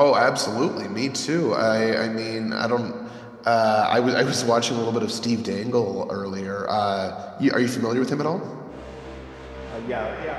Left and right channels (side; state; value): both; identical; correlation 1.00